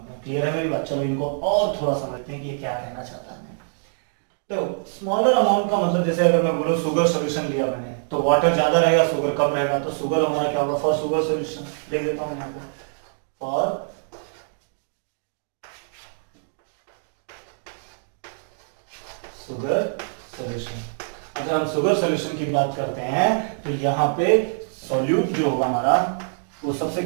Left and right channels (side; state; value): left; silent; digital silence